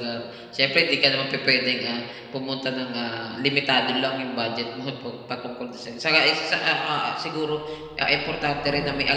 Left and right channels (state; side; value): identical; both; correlation 1.00